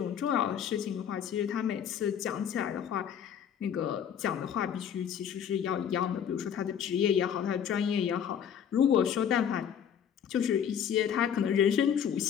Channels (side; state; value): right; quieter; 8.5 dB